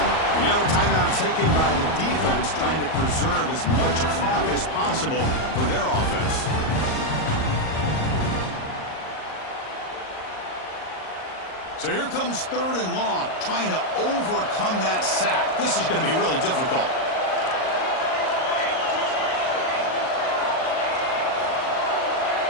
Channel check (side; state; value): right; late; 38 ms